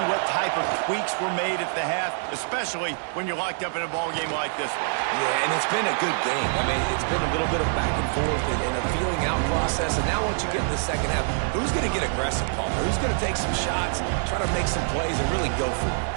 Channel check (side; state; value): left; silent; digital silence